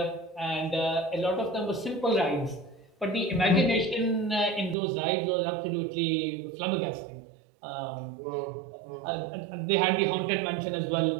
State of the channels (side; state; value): left; drops out; at 4.8 s